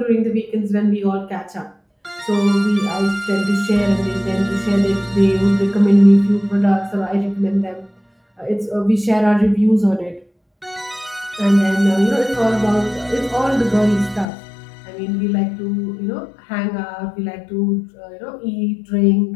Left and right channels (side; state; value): right; drops out; at 14.2 s